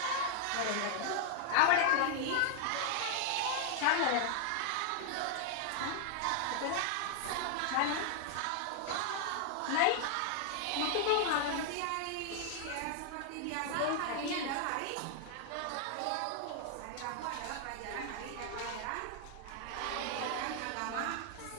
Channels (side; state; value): both; different; correlation 0.00